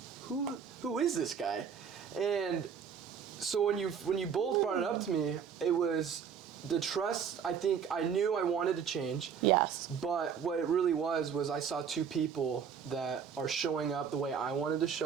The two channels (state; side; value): quieter; left; 7.2 dB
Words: who is this guy? And so when you both brought it up to me, it was the trust. I think I knew I wanted to change. Yes. But what it really was I saw two people that are showing up the way I wanted to